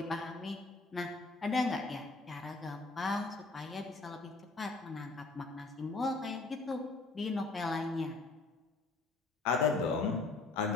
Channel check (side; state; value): right; quieter; 3.5 dB